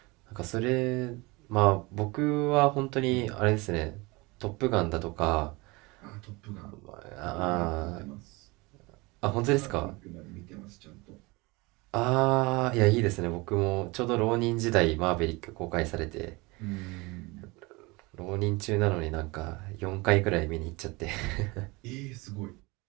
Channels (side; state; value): left; quieter; 24.7 dB